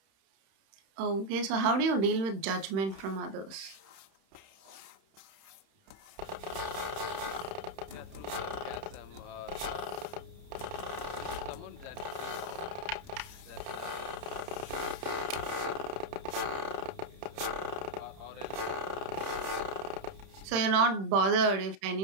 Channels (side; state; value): left; late; 30 ms